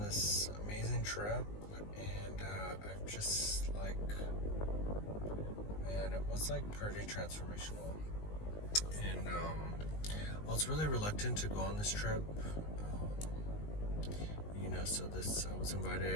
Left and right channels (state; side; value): late; right; 19 ms